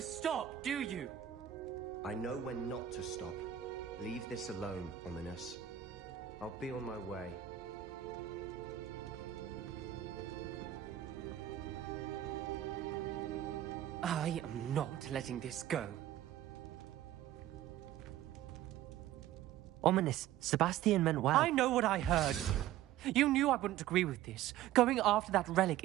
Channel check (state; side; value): quieter; left; 12.2 dB